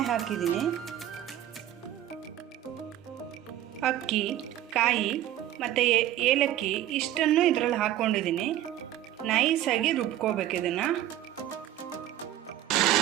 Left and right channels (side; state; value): left; quieter; 12.7 dB